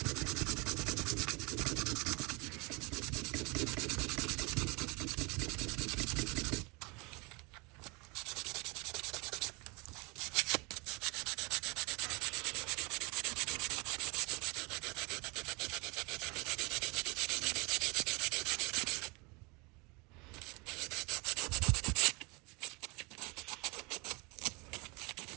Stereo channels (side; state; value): left; quieter; 27.6 dB